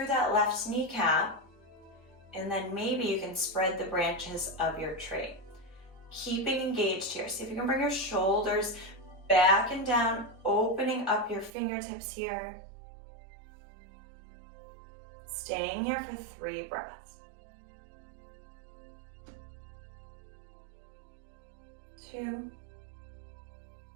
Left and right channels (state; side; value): drops out; left; at 11.5 s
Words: that left kneecap, and then maybe you can spread the branches of your tree. Keeping engaged here. See if you can bring your shoulders back and down, opening up your fingertips here. Staying here for 3 breaths. 2.